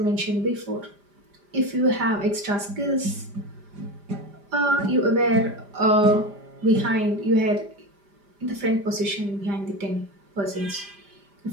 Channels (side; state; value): left; late; 5.0 ms